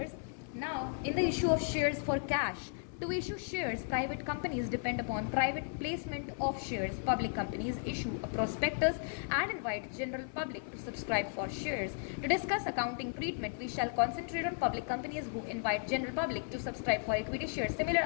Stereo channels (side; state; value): right; silent; 54 dB below the other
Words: Now in the issue of shares for cash, To issue shares, private companies depend upon private placement of shares. Public companies issue a prospectus and invite general public to subscribe for shares. To discuss accounting treatment, we shall concentrate on public companies who invite general public to subscribe for equity shares. Similar